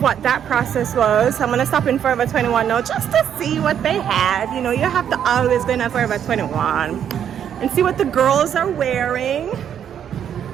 that process was. I'm gonna stop in Forever 21 now just to see what they had. You know, you have to always go in Forever 21 and see what the girls are wearing.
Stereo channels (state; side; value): quieter; left; 9.1 dB